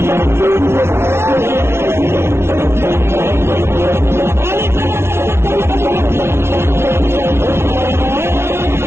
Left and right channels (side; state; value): left; late; 0.12 ms